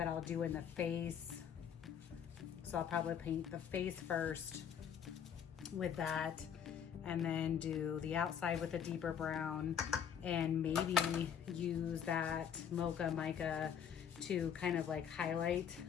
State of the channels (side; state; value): right; quieter; 8.3 dB